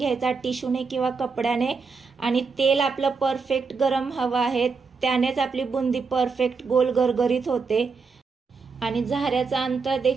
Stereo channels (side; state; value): left; quieter; 4.8 dB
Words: टिश्यूने किंवा कपड्याने। आणि तेल आपलं परफेक्ट गरम हवं आहे, त्यानेच आपली बुंदी परफेक्ट गोल गरगरीत होते। आणि झाऱ्याचं अंतर